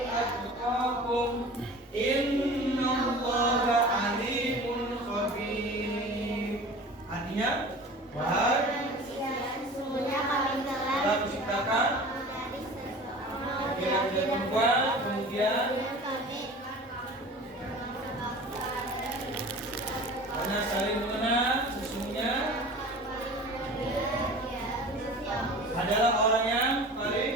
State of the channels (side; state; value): both; normal; correlation 0.40